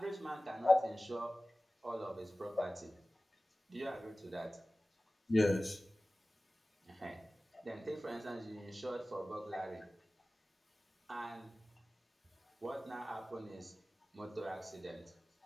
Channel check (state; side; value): normal; both; correlation 0.97